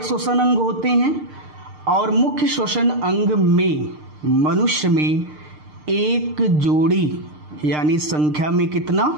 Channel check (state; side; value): late; left; 6.6 ms